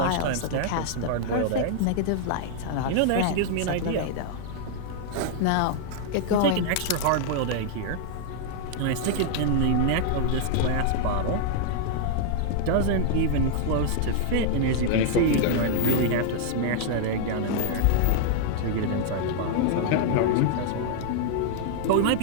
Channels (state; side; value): different; both; correlation -0.01